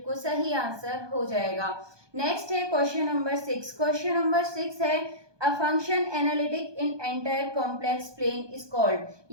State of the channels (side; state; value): left; late; 1.2 ms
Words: सही आंसर हो जाएगा। नेक्स्ट है क्वेश्चन नंबर 6। क्वेश्चन नंबर 6 है a function analytic in entire complex plane is called,